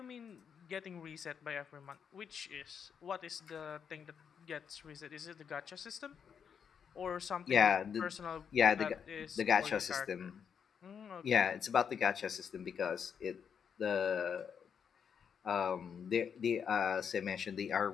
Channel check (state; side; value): quieter; right; 7.2 dB